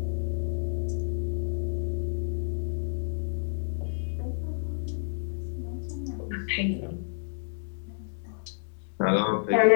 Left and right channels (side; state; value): right; silent; digital silence